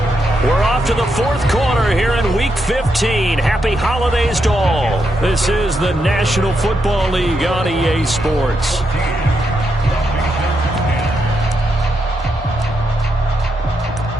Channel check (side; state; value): both; normal; correlation 0.82